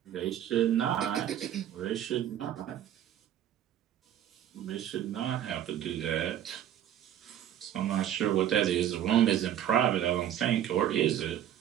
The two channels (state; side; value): quieter; left; 11.0 dB